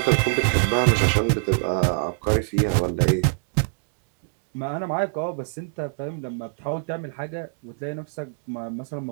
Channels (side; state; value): left; silent; digital silence